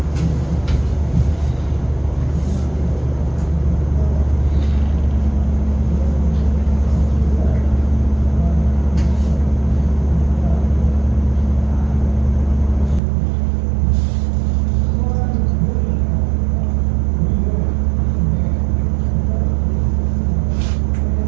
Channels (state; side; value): drops out; left; at 13.0 s